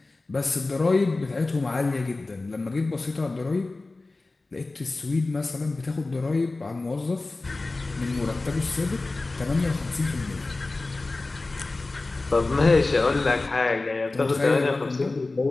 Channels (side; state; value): right; quieter; 3.3 dB